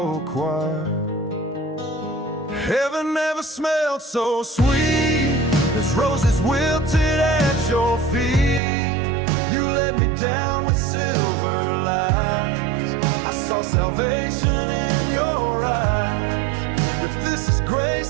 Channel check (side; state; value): left; drops out; at 8.6 s